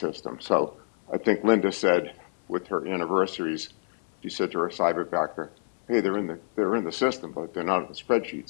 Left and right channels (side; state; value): right; silent; 60 dB below the other